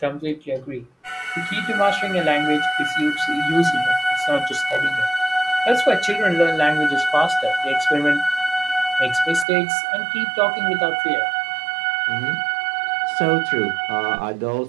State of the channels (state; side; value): drops out; left; at 9.5 s